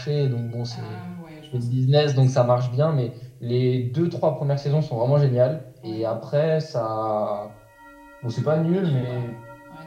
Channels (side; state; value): both; identical; correlation 1.00